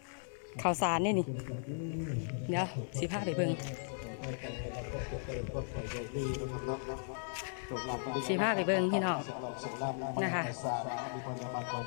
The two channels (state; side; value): silent; right; digital silence